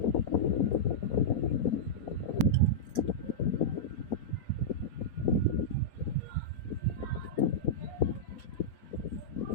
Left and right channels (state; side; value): late; right; 4.2 ms